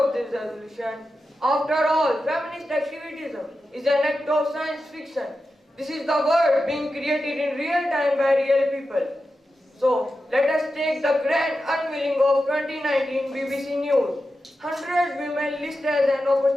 this resolution. After all, feminist activism is an act of science fiction. This is the world being created in real time by real people. So, let us take the grand unveiling of 2019 BBC News. 100 women listed as an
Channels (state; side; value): normal; both; correlation 0.91